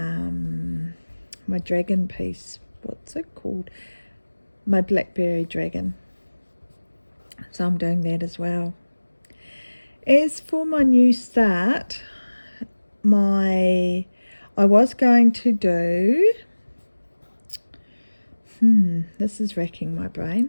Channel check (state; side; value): inverted; both; correlation -1.00